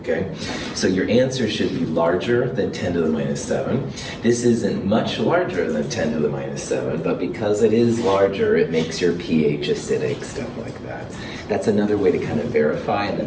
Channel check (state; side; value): identical; both; correlation 1.00